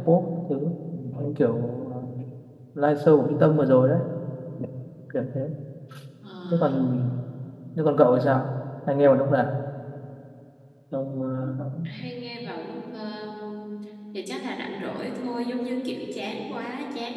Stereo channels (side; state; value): both; identical; correlation 1.00